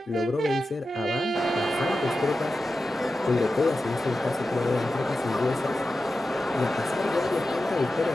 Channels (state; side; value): normal; both; correlation 0.92